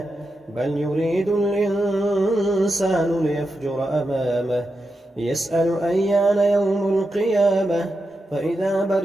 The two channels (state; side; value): normal; both; correlation 0.88